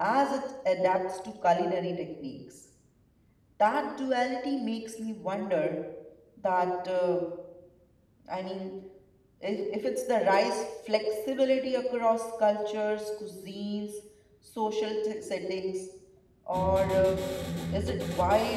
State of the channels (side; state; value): both; identical; correlation 1.00